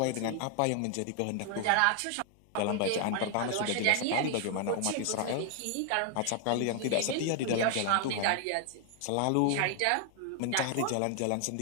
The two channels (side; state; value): both; different; correlation 0.00